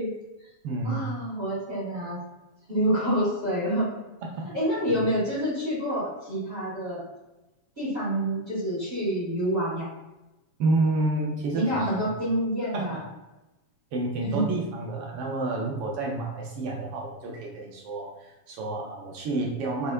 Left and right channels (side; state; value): left; late; 7.2 ms